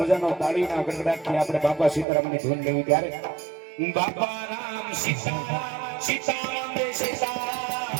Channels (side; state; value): left; drops out; at 2.1 s